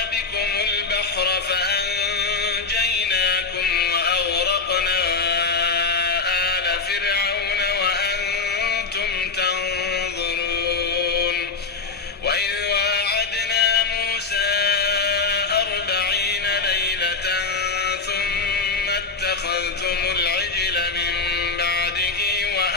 بكم البحر فأنجيناكم وأغرقنا آل فرعون وأنتم تنظرون. وإذ واعدنا موسى 40 ليلة ثم اتخذتم العجل من بعده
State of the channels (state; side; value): quieter; right; 4.3 dB